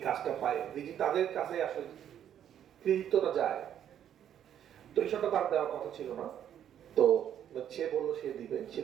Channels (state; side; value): quieter; left; 9.9 dB